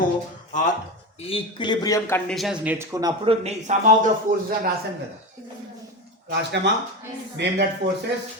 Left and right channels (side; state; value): both; normal; correlation 0.21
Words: ఈక్విలిబ్రియం కండిషన్స్ నేర్చుకున్నప్పుడు సమ్ ఆఫ్ ద ఫోర్సెస్ అని రాసాం కదా, రాసినామా? Name that forces: